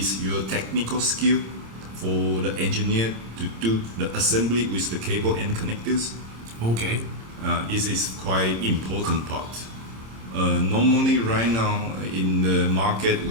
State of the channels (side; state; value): left; late; 26 ms